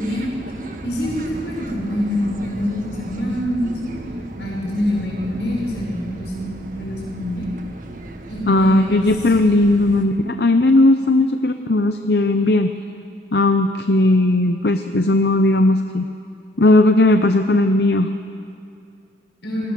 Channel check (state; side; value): normal; both; correlation 0.63